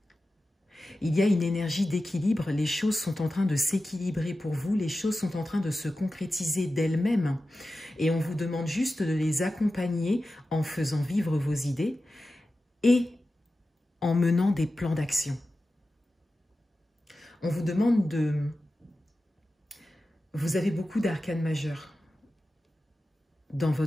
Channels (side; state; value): both; normal; correlation 0.93